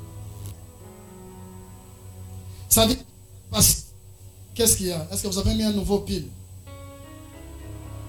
Ça dit, qu'est-ce qu'il y a? Est-ce que vous avez mis un nouveau pile?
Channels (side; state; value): both; identical; correlation 1.00